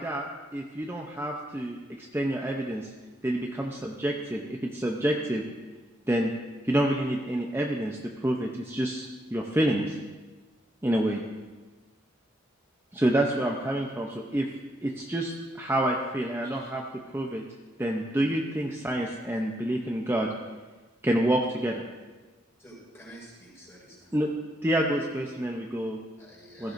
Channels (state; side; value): normal; both; correlation 0.77